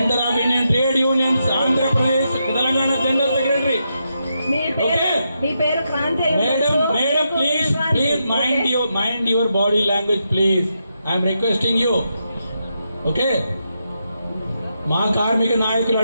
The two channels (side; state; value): both; inverted; correlation -0.84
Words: of Indian trade unions Andhra Pradesh Telangana general secretary. మీ పేరు Kranti. Madam please mind your body language please. I'm requesting you. Okay, మా కార్మిక నాయకులు